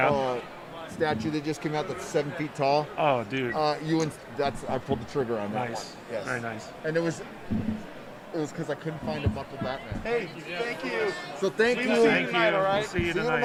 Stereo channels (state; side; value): identical; both; correlation 1.00